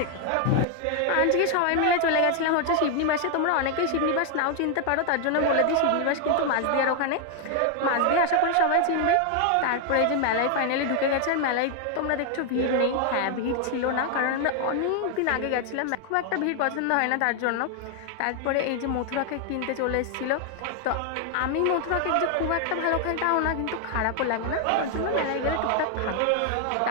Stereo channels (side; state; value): both; different; correlation 0.00